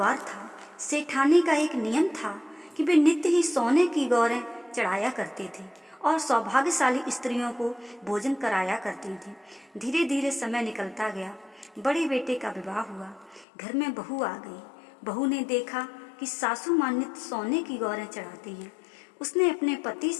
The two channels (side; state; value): right; drops out; at 13.5 s